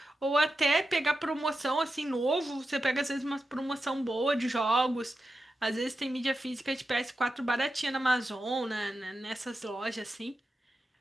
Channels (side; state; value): both; normal; correlation 0.90